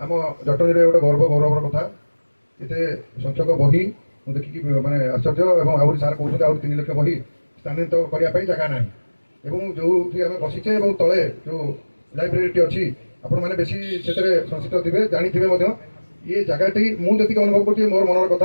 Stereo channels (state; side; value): inverted; both; correlation -1.00